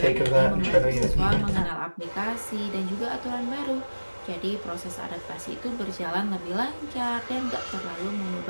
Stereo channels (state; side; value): inverted; both; correlation -1.00